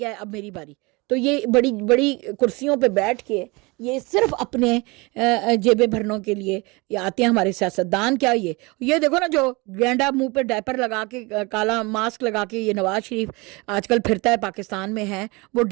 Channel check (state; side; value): quieter; left; 26.0 dB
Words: ہے اب میری باری۔ تو یہ بڑی بڑی کرسیوں پہ بیٹھ کے یہ صرف اپنے جیبیں بھرنوں کے لیے یہ آتے ہیں ہمارے سیاستدان۔ کیا یہ دیکھو نا، جو گینڈا منہ پہ ڈائپر لگا کے، کالا ماسک لگا کے یہ نواز شریف آج کل پھرتا ہے پاکستان میں ہے، وہ